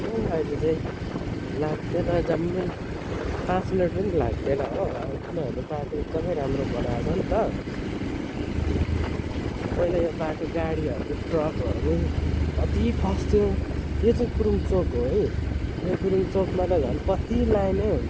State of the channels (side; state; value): both; identical; correlation 1.00